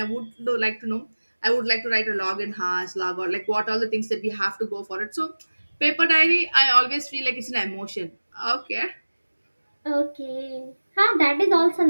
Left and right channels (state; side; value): inverted; both; correlation -1.00